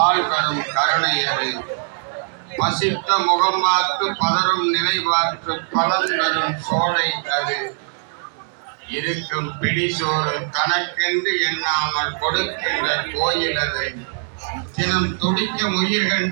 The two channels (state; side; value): silent; left; 65 dB below the other